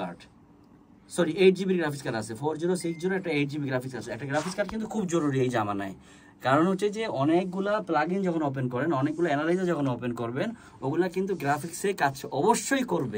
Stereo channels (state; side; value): identical; both; correlation 1.00